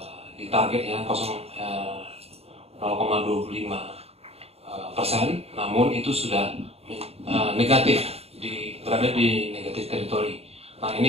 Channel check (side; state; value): left; late; 0.29 ms